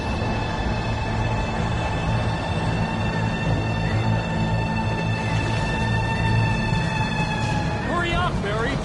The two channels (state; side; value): identical; both; correlation 1.00